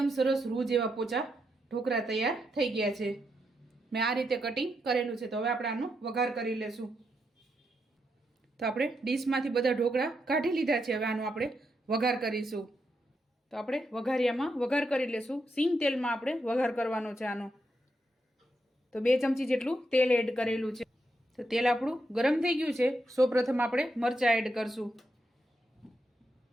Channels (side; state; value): both; normal; correlation 0.82